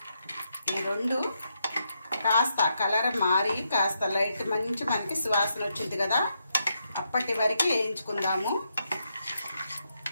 ఈ రెండు కాస్త కలర్ మారి కాస్త లైట్ మంచి మనకి సువాసన వచ్చింది కదా, అప్పటి వరకు వేయించుకుందాము.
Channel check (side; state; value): both; inverted; correlation -0.81